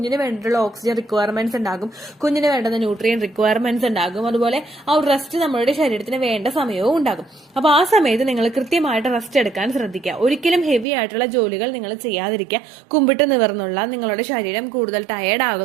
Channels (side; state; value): left; drops out; at 10.9 s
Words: വേണ്ടിയിട്ടുള്ള ഓക്സിജൻ റിക്വയർമെന്റ്സ് ഉണ്ടാകും, കുഞ്ഞിന് വേണ്ടുന്ന ന്യൂട്രിയൻ റിക്വയർമെന്റ്സ് ഉണ്ടാകും, അതുപോലെ ആ ഒരു റെസ്റ്റ് നമ്മുടെ ശരീരത്തിന് വേണ്ട സമയവും ഉണ്ടാകും. അപ്പൊ ആ സമയത്ത് നിങ്ങൾ കൃത്യമായിട്ട് റെസ്റ്റ് എടുക്കാൻ ശ്രദ്ധിക്കുക. ഒരിക്കലും ഹെവി ആയിട്ടുള്ള ജോലികൾ നിങ്ങൾ ചെയ്യാതിരിക്കുക. കുമ്പിട്ട് നിവർന്നുള്ള നിങ്ങളുടെ ശരീരം കൂടുതൽ ടയേർഡ്